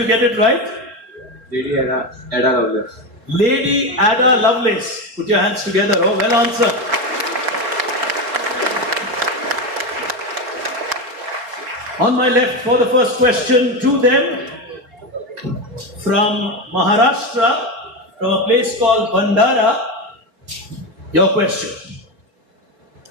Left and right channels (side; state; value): left; late; 4.9 ms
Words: get it right. Ada lovers. Lady Ada Lovelace. Put your hands together. Oh, well answered. On my left for the first question to them from Maharashtra, from a place called Bandara. Your question.